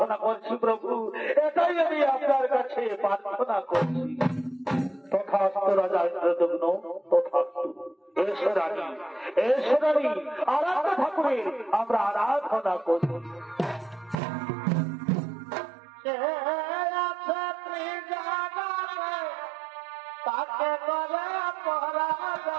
করছি প্রভু, এটাই আমি আপনার কাছে প্রার্থনা করছি। তথাস্তু রাজা ইন্দ্রদগ্ন, তথাস্তু। এসো রানী, এসো রানী, আরাধনা ঠাকুরের আমরা আরাধনা করি। তাকে করে পরাজ,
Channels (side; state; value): left; drops out; at 14.2 s